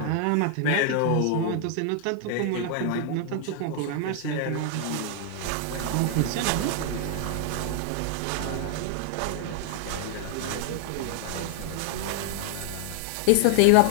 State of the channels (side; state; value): both; different; correlation 0.00